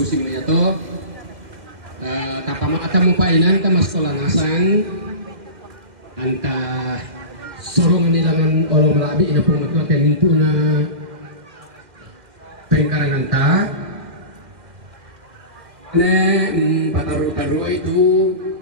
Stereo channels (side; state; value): left; late; 2.1 ms